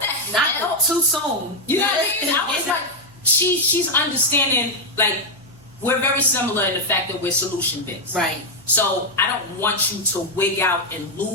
not hell? too soon. You know what I mean? I was like, she's understanding, like, we're very similar in the fact that we're solution based. Right. So I don't want you to wig out and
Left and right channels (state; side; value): noise; right; hum, 28 dB below the sound